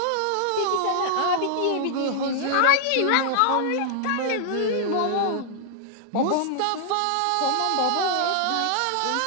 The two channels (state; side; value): different; both; correlation 0.00